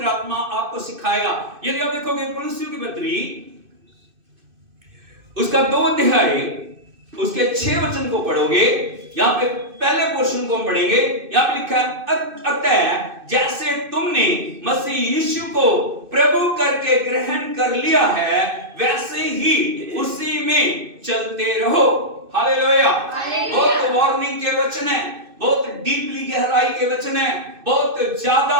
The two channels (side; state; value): left; late; 2.6 ms